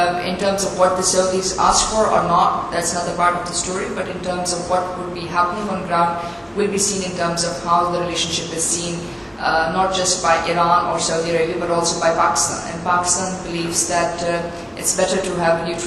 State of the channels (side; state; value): both; identical; correlation 1.00